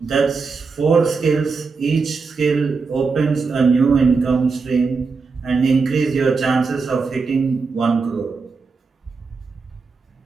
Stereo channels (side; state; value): left; quieter; 4.7 dB